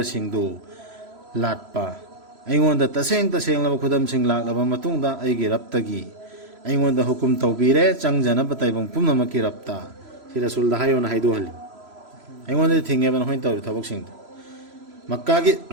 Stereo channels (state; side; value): late; left; 3.0 ms